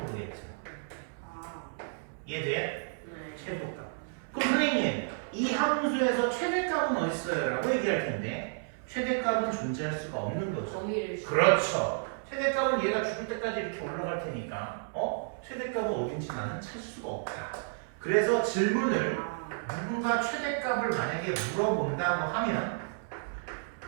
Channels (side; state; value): left; silent; 57 dB below the other